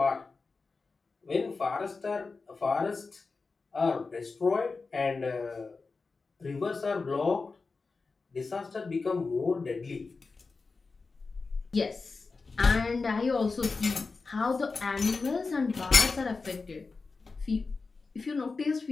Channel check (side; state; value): right; quieter; 4.2 dB